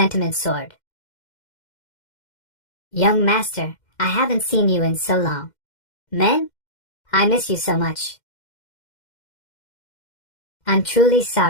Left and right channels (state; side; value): late; right; 2.1 ms